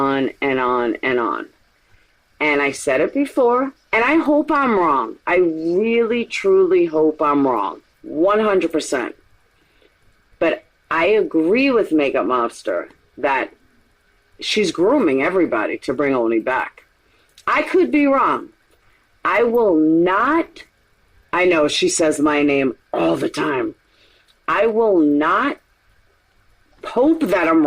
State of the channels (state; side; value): identical; both; correlation 1.00